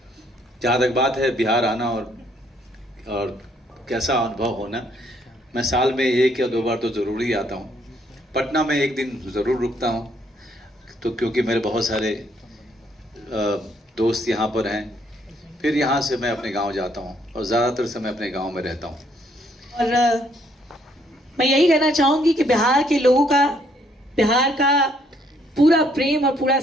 जहाँ तक बात है बिहार आना और कैसा अनुभव होना, मैं साल में 1 या 2 बार तो ज़रूर ही आता हूँ। पटना में एक दिन ज़रूर रुकता हूँ, तो क्योंकि मेरे बहुत सारे दोस्त यहाँ पर हैं। फिर यहाँ से मैं अपने गांव जाता हूँ और ज़्यादातर समय अपने गांव में रहता हूँ। और मैं यही कहना चाहूँगी कि बिहार के लोगों का, बिहार का पूरा प्रेम और पूरा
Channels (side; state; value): both; normal; correlation 0.68